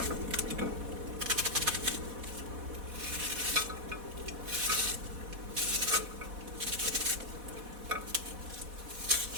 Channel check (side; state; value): left; late; 4.1 ms